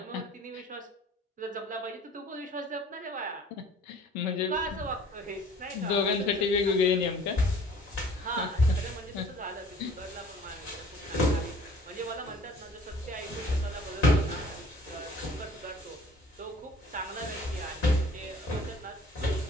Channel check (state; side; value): normal; both; correlation 0.51